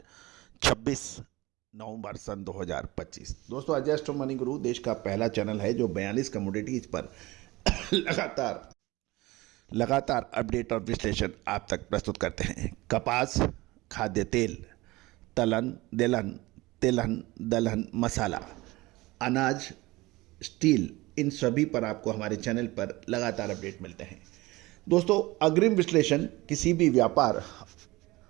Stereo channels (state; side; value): quieter; left; 20.5 dB